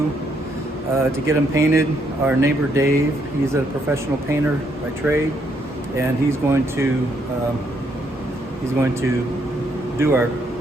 to get them painted. Our neighbor Dave, he's a professional painter by trade, and he's going to do our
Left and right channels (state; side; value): normal; both; correlation 0.73